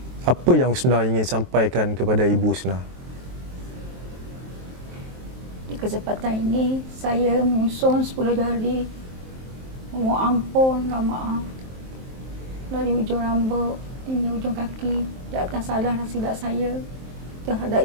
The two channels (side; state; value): left; late; 23 ms